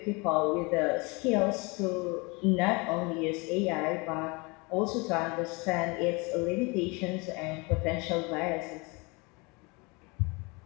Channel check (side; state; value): right; quieter; 27.9 dB